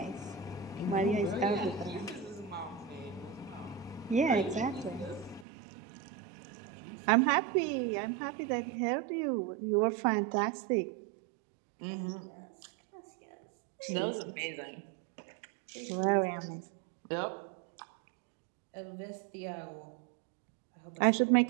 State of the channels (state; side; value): drops out; left; at 5.5 s